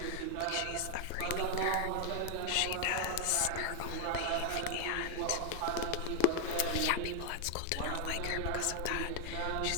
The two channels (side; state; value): both; different; correlation 0.00